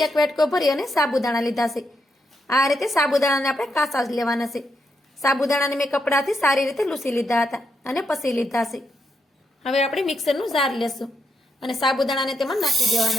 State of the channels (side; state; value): both; normal; correlation 0.81